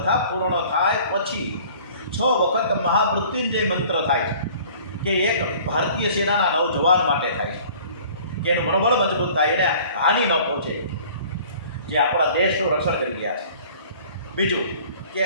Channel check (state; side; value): inverted; both; correlation -0.49